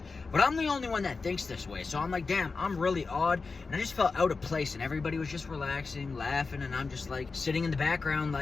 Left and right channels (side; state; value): right; quieter; 4.3 dB